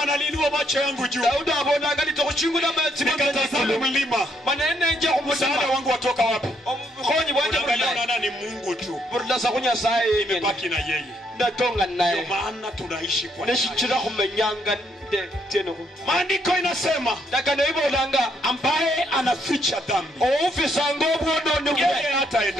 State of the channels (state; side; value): normal; both; correlation 0.73